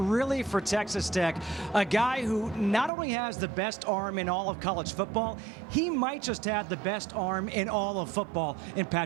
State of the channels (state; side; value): drops out; left; at 2.9 s